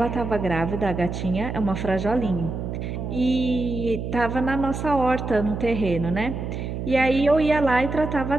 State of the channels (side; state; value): right; noise; hum, 5 dB below the sound